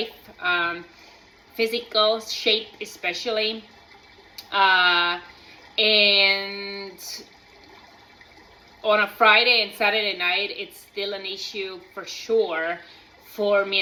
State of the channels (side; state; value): both; identical; correlation 1.00